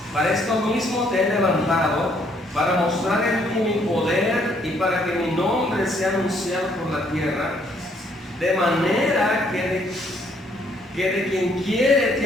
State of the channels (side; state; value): both; normal; correlation 0.67